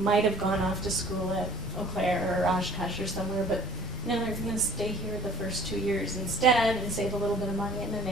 have gone off to school at Eau Claire or Oshkosh or somewhere, but no, they're going to stay here the first 2 years instead and save a little bit of money, and then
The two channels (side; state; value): right; noise; hum, 21 dB below the sound